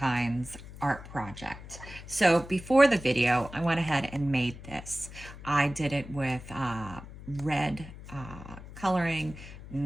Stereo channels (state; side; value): noise; left; hum, 15 dB below the sound